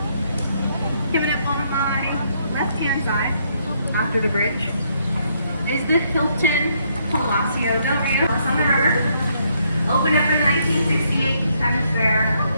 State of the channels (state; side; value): inverted; both; correlation -0.72